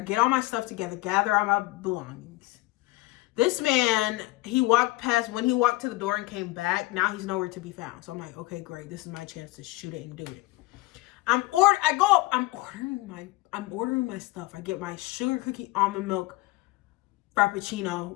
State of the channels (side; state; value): right; quieter; 20.4 dB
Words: get all my stuff together, gather all my belongings. This man, he walked past, when he walked to the door and came back, now he's nowhere to be found. So I'm like, okay, great. This is my chance to shoot it and do it. I'm ordering my stuff. I get my sugar cookie almond milk Frappuccino